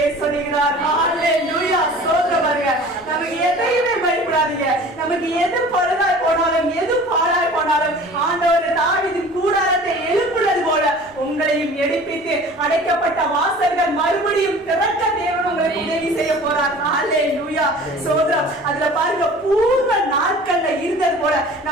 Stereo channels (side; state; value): both; normal; correlation 0.44